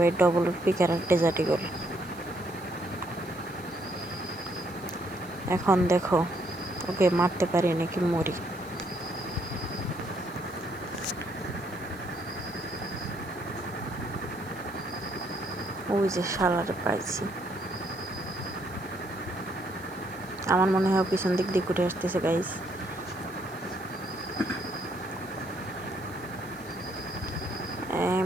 ডবল পিকার আর ডেজার্ট ইগল। এখন দেখো ওকে মারতে পারি নাকি মরি। ওই যে শালারে পাইছি। আমার মনে হয় পিছন দিক দিয়ে ঘুরে আসতেছে গাইস।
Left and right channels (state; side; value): noise; right; hiss, 22 dB below the sound